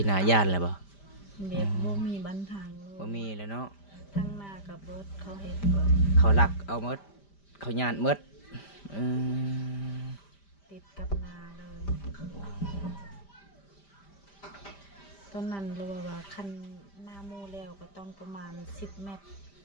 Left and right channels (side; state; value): right; late; 5.0 ms